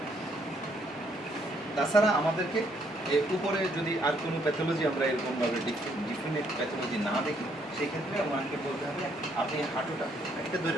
তাছাড়া আমাদেরকে উপরে যদি আর কোনো প্যাথোলজি আমরা এরকমভাবে ডিফিনিট প্যাথোলজি না দেখি, সেই ক্ষেত্রে আমাকে বলতে হবে আপনি হাঁটুটা একটা ধরে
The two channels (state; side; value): normal; both; correlation 0.70